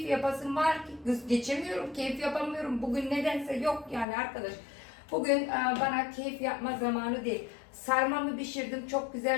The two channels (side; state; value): right; drops out; at 4.0 s